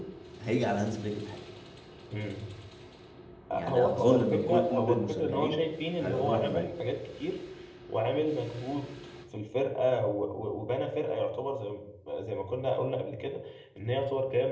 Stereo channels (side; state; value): both; identical; correlation 1.00